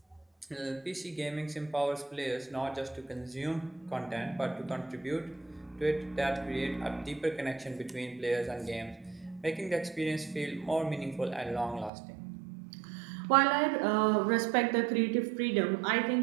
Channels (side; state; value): left; drops out; at 11.9 s